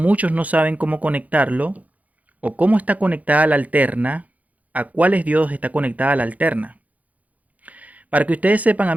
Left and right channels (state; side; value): late; left; 0.074 ms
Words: no saben cómo conectarlo o cómo está conectada la alterna, a cuáles diodos está conectada la alterna. Para que ustedes sepan,